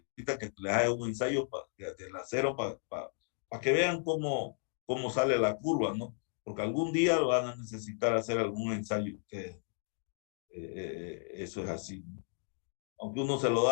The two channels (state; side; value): silent; right; digital silence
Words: que les haga un ensayo del acero para que vean cómo sale la curva, ¿no? Porque algún día van a necesitar hacer algún ensayo ustedes. Eso es así, ¿no? Aunque uno se lo